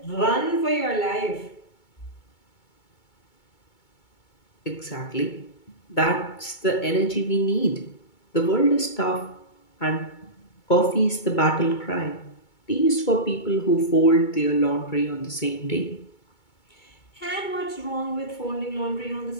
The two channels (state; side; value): late; right; 2.2 ms